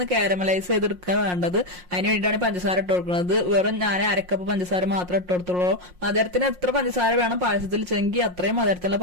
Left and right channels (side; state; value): left; late; 5.6 ms